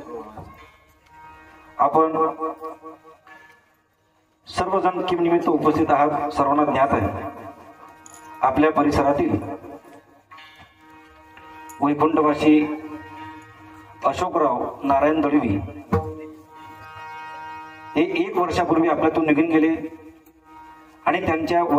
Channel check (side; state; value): both; identical; correlation 1.00